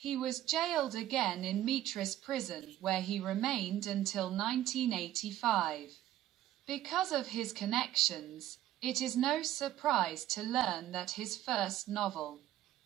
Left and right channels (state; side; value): quieter; left; 13.3 dB